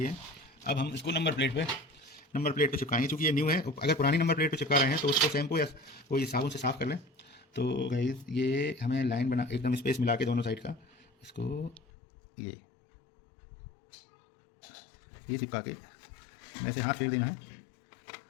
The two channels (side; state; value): right; drops out; at 11.8 s